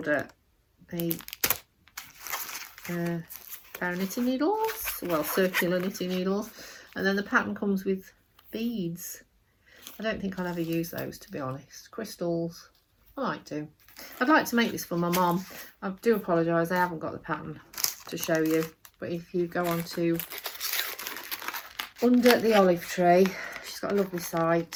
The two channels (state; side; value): identical; both; correlation 1.00